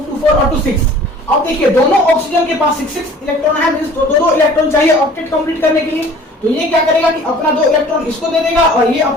to 4 और 2 6। अब देखिए, दोनों ऑक्सीजन के पास 6 इलेक्ट्रॉन है। मींस दो इलेक्ट्रॉन चाहिए ऑक्टेट कंप्लीट करने के लिए। तो ये क्या करेगा कि अपना 2 इलेक्ट्रॉन इसको दे देगा, और ये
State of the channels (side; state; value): both; normal; correlation 0.48